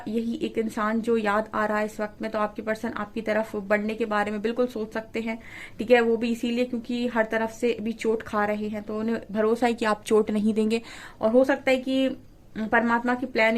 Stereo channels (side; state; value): both; identical; correlation 1.00